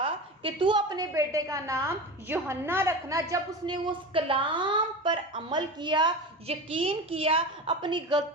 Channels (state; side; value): normal; both; correlation 0.28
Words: کہ تو اپنے بیٹے کا نام یوحنا رکھنا، جب اس نے اس کلام پر عمل کیا، یقین کیا، اپنی